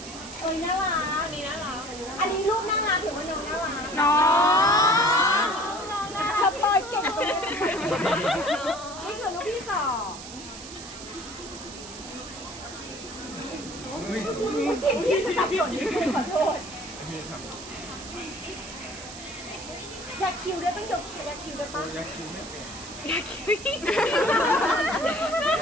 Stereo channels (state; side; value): noise; right; hiss, 13 dB below the sound